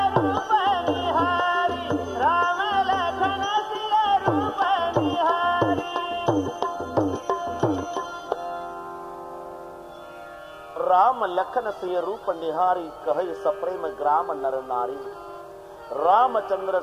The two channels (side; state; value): both; identical; correlation 1.00